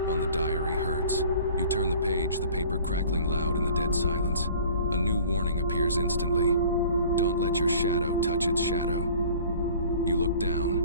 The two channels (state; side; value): inverted; both; correlation -0.49